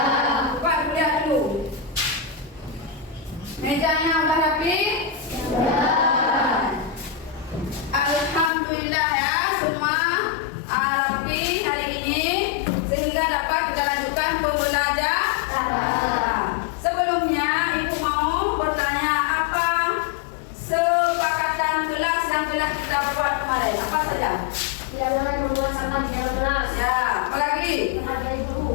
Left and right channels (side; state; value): right; drops out; at 8.5 s